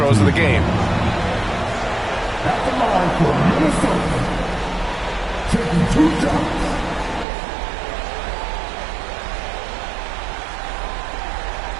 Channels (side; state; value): left; drops out; at 7.2 s